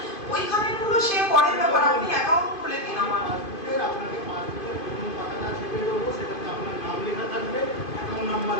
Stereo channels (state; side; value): late; right; 2.5 ms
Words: ওইখানে গুলো সে পরের ব্যাপার, আপনি অ্যাকাউন্ট খুলে দিন আমার।